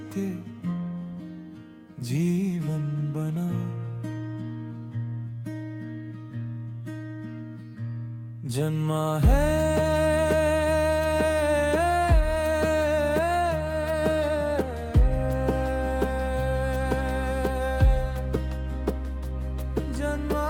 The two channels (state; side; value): identical; both; correlation 1.00